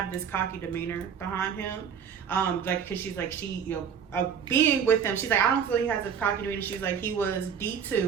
this cocky demeanor behind him. Like, cause she's like being with him, she's like, I don't feel he has a cocky demeanor. She's like, he was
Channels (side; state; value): left; quieter; 7.5 dB